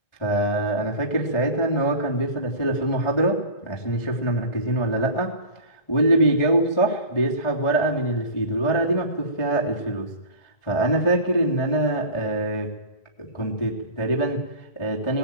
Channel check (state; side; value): late; right; 1.4 ms